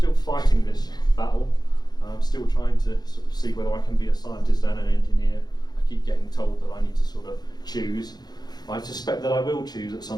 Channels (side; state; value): right; late; 0.20 ms